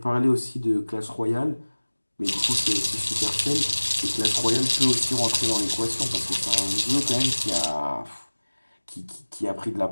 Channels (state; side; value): inverted; both; correlation -1.00